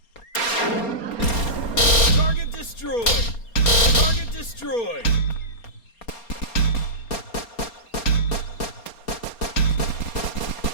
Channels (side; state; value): right; late; 4.3 ms